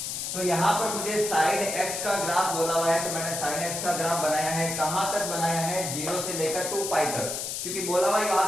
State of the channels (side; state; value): left; noise; hiss, 4 dB below the sound